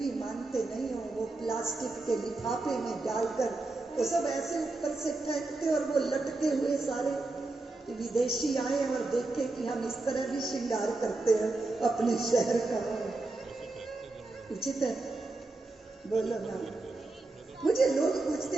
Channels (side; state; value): left; quieter; 3.1 dB